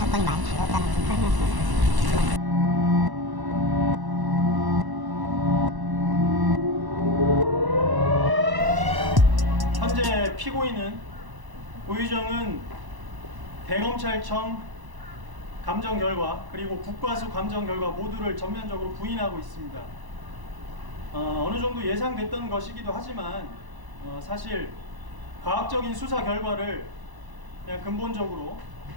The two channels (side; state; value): left; late; 1.0 ms